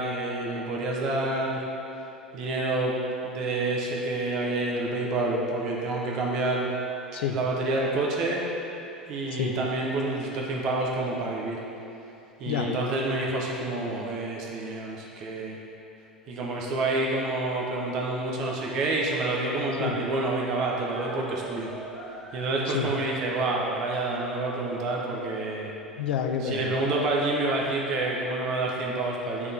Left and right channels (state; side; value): normal; both; correlation 0.30